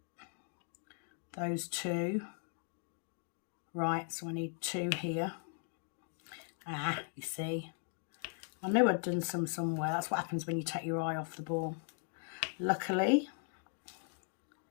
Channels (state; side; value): silent; right; 52 dB below the other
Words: Those two. Right, so I need two here. Ah, you see. I knew I'd done some somewhere. That's what happens when you take your eye off the ball. Luckily,